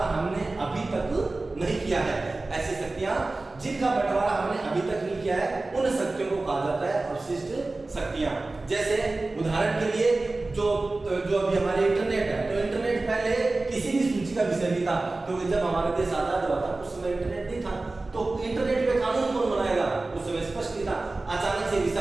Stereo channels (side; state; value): left; quieter; 3.2 dB